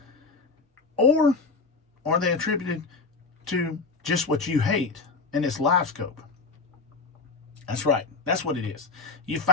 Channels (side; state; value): right; quieter; 4.2 dB